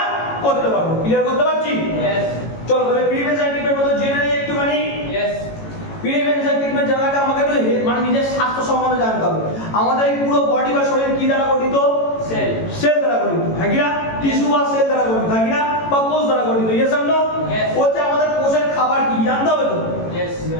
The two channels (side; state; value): right; late; 18 ms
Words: করতে পারবো ক্লিয়ার করতে পারছি চলো তাহলে প্রিভেনশন ট্রিটমেন্ট মতো জেনে নিই একটুখানি প্রিভেনশন ট্রিটমেন্ট জানার আগে আমাকে একটু মানে নিজের স্বাস্থ্য সম্বন্ধে জানতে হবে আমাদের এই পুরো বডি বা শরীর কি দ্বারা গঠিত সেল দ্বারা গঠিত হ্যাঁ কি না টিস্যু বা সেল দ্বারা গঠিত হ্যাঁ কি না বা কোষ দ্বারা গঠিত ইয়েস আর নো হচ্ছে আমাদের কোষের খাবার কি জানতে হবে তো